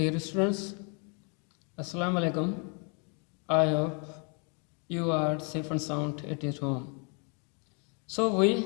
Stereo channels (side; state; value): right; quieter; 36.6 dB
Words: students, Assalamu alaikum. I hope you are safe and sound at your home. So we